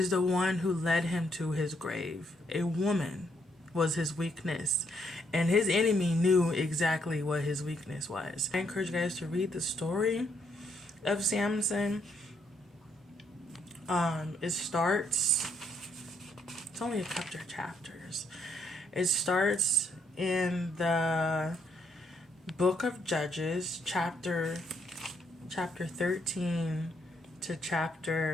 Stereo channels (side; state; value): both; normal; correlation 0.73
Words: the one who led him to his grave. A woman was his weakness, and his enemy knew exactly what his weakness was. I encourage you guys to read the story of Samson. It's only a couple of chapters. It starts in the book of Judges, chapter 13 to